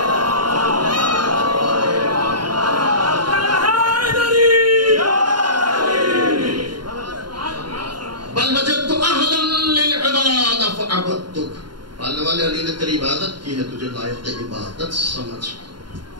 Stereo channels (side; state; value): left; late; 0.72 ms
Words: بل وجدت اہلا للعبادہ فعبدتک، پالنے والے علی نے تیری عبادت کی ہے، تجھے لائق عبادت سمجھ،